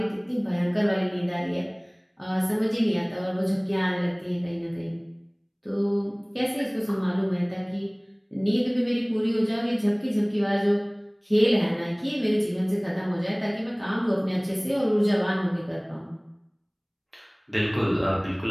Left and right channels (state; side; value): identical; both; correlation 1.00